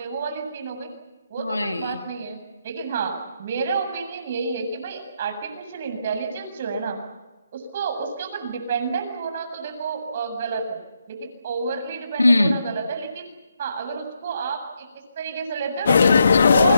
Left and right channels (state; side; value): inverted; both; correlation -0.80